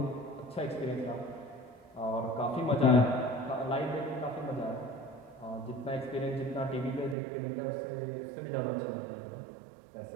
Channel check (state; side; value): drops out; left; at 7.2 s